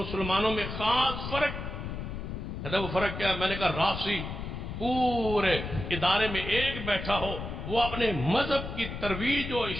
میں، خاص فرق. کہتا وہ فرق کیا ہے؟ میں نے کہا رافضی پورے ادارے میں ایک بیٹھا ہو، وہ اپنے مذہب کی ترویج و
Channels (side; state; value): left; noise; rumble, 6 dB below the sound